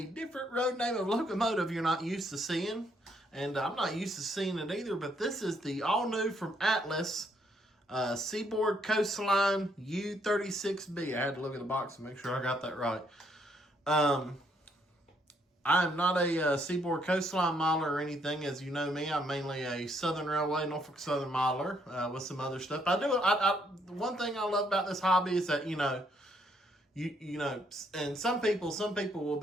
different road name of locomotive you're not used to seeing. And I'm not used to seeing it either, but this is the all new from Atlas Seaboard Coastline U36B. I had to look at the box and make sure I got that right. I'm not a Seaboard Coastline miler or anything. As you know me, I'm mainly a Southern Railway, Norfolk Southern miler with some other stuff. One thing I love about this hobby is that, you know, and some people will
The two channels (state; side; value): normal; both; correlation 0.71